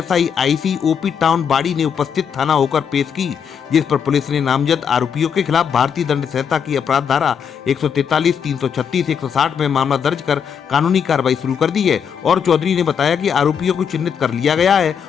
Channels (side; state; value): right; quieter; 7.3 dB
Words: IC OP town बाड़ी ने उपस्थित थाना होकर पेश की, जिस पर पुलिस ने नामजद आरोपियों के खिलाफ भारतीय दंड संहिता की अपराध धारा 143, 336, 160 में मामला दर्ज कर कानूनी कार्रवाई शुरू कर दी है। और चौधरी ने बताया कि आरोपियों को चिन्हित कर लिया गया है